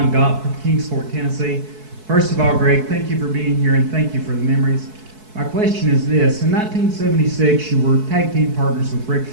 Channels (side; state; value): left; late; 4.6 ms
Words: Gott from Kingsport, Tennessee. First of all, Greg, thank you for being here and thank you for the memories. My question is this. In 1976, you were tag team partners with Ric